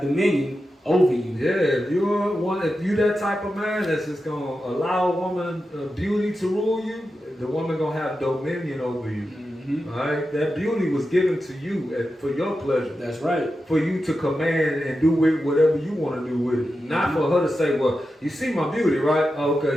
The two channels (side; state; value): both; normal; correlation 0.90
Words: over you. Yeah, if you that type of man that's just gonna allow a woman beauty to rule you, the woman gonna have dominion over you. Mm-hmm. All right, that beauty was given to you for your pleasure. That's right. For you to command and do with whatever you want to do with it. Mm-hmm. Not for her to say, well, you see my beauty, right? Oh,